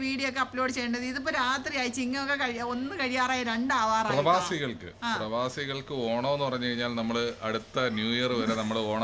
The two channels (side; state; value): both; identical; correlation 1.00